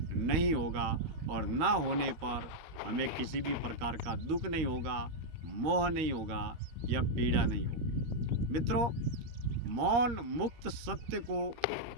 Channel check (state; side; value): late; left; 13 ms